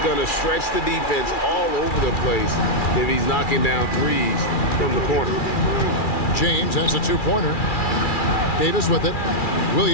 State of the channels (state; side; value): late; right; 2.4 ms